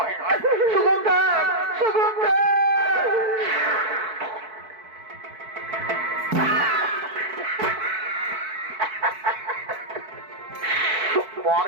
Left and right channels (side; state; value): left; late; 4.6 ms